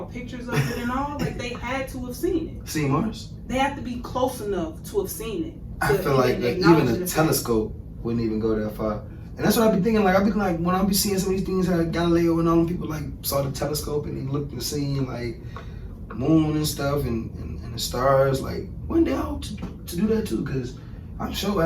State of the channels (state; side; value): identical; both; correlation 1.00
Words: pictures of it and all? Like they had to have seen it. See Mars? They have to be close enough to have seen it. I feel like even a telescope wouldn't even go that far. And that's what I be thinking. Like I be like when I be seeing some of these things, how Galileo and all them people like saw the telescope and they looked and seen like moon and stuff and the stars. Like one day I hope to do that too, because I'm sure